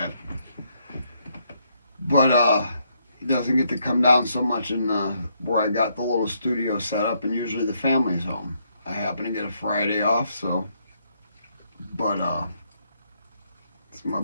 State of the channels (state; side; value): inverted; both; correlation -0.74